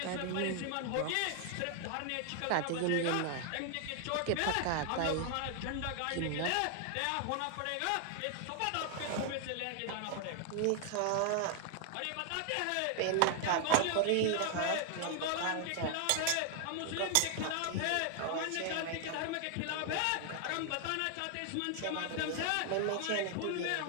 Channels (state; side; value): different; both; correlation 0.00